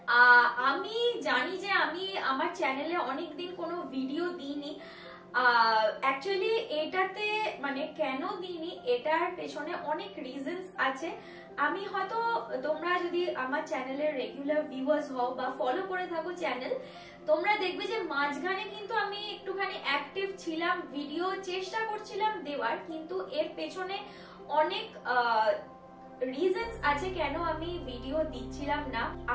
আমি জানি যে আমি আমার চ্যানেলে অনেকদিন কোনো ভিডিও দিইনি। অ্যাকচুয়ালি এটাতে মানে কেন দিইনি এটার পেছনে অনেক রিজনস আছে। আমি হয়তো তোমরা যদি আমার চ্যানেলের রেগুলার ভিউয়ার্স হও বা ফলো করে থাকো চ্যানেল, তোমরা দেখবে যে মাঝখানে কিন্তু আমি একটুখানি অ্যাক্টিভ ছিলাম, ভিডিও চেষ্টা করছিলাম দেওয়ার, কিন্তু এর পেছনে অনেক রিজনস আছে কেন আমি ভিডিও দিচ্ছিলাম না।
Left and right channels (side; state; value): both; identical; correlation 1.00